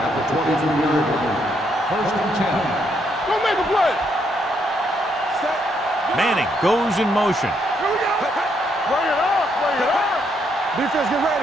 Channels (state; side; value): normal; both; correlation 0.75